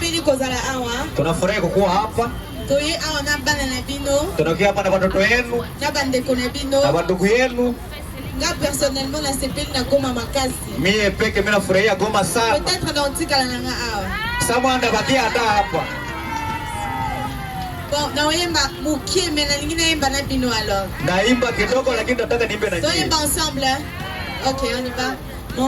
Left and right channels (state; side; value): identical; both; correlation 1.00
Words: kozala awa. Tunafurahi kukuwa hapa. Toye awa na bana na bino. Tunakuja hapa na watoto wenu. Na bandeko na bino. Na wandugu yenu. Nga personnellement na sepeli na Goma makasi. Mie peke mimi nafurahia Goma sana. Peut-être na utikala na nga awa. Samwanda bakia hata hapa. Bon, na oyemba mukie mais na lingine yemba na bino alors. Naimba kidogo lakini nataka niimbe na nyinyi. Toyemba ensemble. Hein? Ok, on y va.